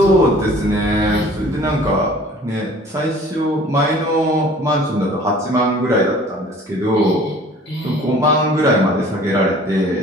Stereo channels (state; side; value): normal; both; correlation 0.49